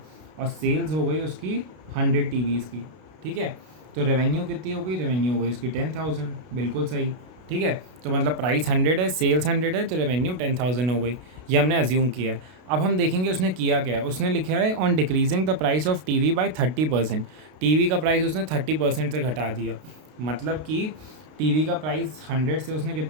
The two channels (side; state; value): left; late; 32 ms